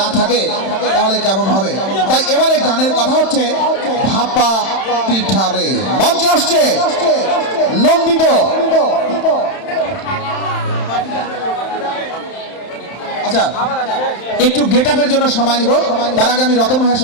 থাকে তাহলে কেমন হবে? তাই এবারে গানের কথা হচ্ছে ভাপা পিঠারে। মঞ্চে আসছে নন্দিত। আচ্ছা, একটু গেট আপের জন্য সময় নিব, তার আগে আমি রতন ভাইয়ের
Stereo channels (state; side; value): late; right; 31 ms